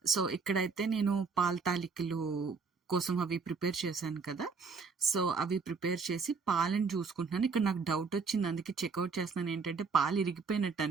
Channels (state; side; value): quieter; left; 4.9 dB